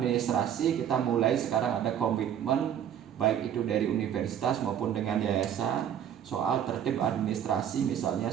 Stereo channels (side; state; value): left; quieter; 9.5 dB